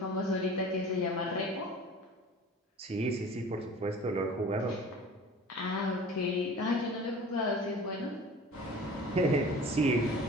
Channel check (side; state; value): both; normal; correlation 0.41